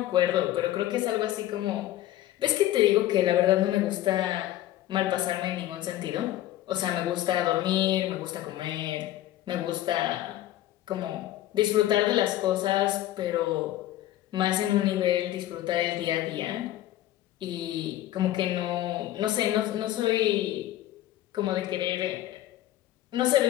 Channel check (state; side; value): quieter; right; 14.0 dB